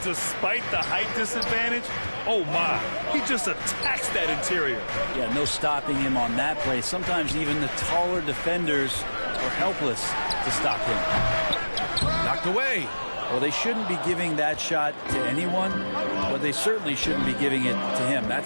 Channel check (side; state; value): both; inverted; correlation -1.00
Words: despite the height disadvantage, oh my, he just attacks that interior. Yeah, no stopping him on that play. Sometimes even the taller defenders are helpless to stop him. Knocked away. Well, they shouldn't be giving that shot to anyone, but they certainly shouldn't be giving it to him.